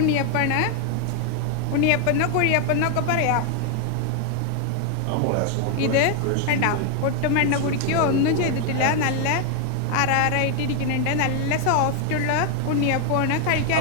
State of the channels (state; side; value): different; both; correlation 0.00